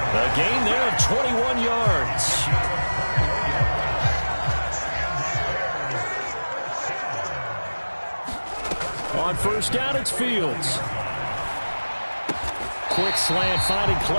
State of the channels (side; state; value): both; inverted; correlation -1.00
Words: A gain there of 21 yards. On first down, it's Fields. Quick slant finding